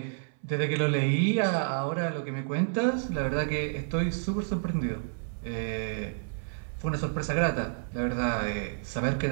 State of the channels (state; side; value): silent; left; 56 dB below the other